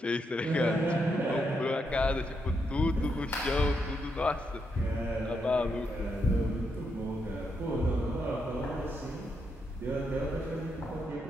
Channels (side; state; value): both; normal; correlation 0.80